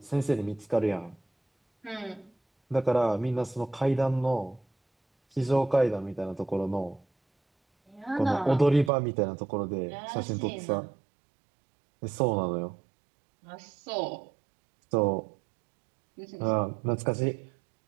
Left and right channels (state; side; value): drops out; left; at 8.9 s